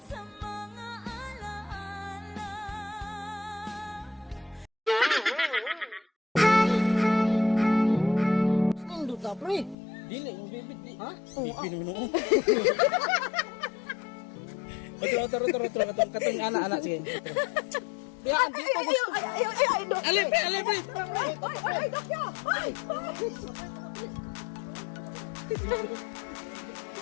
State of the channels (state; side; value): drops out; right; at 9.8 s